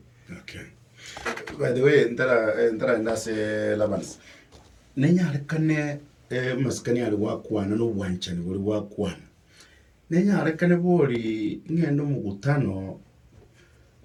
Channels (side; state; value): both; identical; correlation 1.00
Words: Okay. By the way, ndara ndase Labans. Nenya rekane maskani ali wakwana no bwanchani buli wakwana. Nenya rekane boli ngendo mugutano